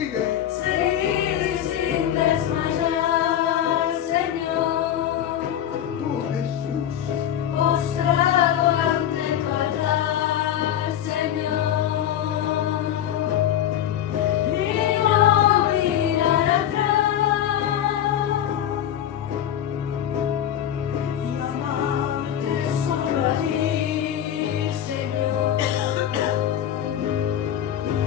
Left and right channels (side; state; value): right; quieter; 10.6 dB